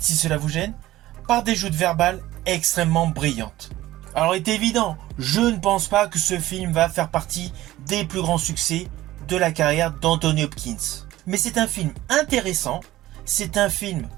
cela vous gêne, par des joutes verbales extrêmement brillantes. Alors il est évident, je ne pense pas que ce film va faire partie des plus grands succès de la carrière d'Anthony Hopkins. Mais c'est un film intéressant, c'est un film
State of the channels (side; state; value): left; quieter; 15.9 dB